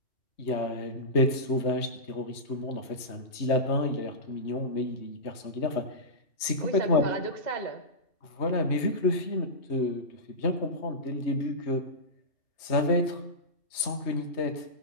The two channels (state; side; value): late; right; 3.2 ms